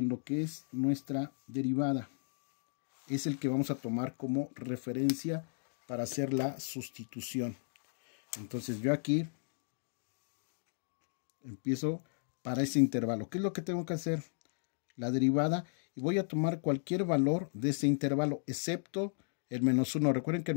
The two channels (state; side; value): silent; right; digital silence